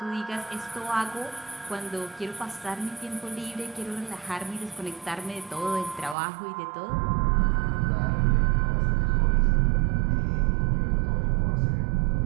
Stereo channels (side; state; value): left; drops out; at 6.2 s